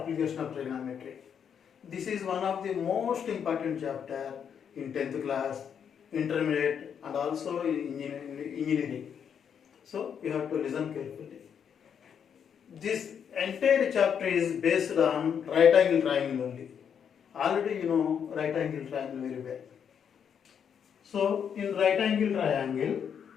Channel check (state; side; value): quieter; right; 7.8 dB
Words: of trigonometry. This is one of the most important chapter in 10th class, intermediate and also in engineering. So you have to listen carefully. This entire chapter is based on right angle triangle only. Already you know right angle triangle very well. So in right angle triangle,